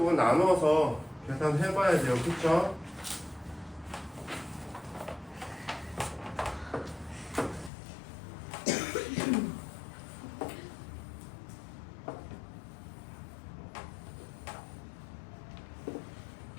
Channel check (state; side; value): drops out; right; at 7.7 s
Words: 나눠서 계산해봐야 돼요. 그쵸?